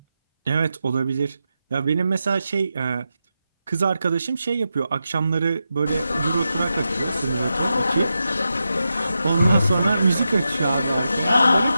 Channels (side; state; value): both; inverted; correlation -0.89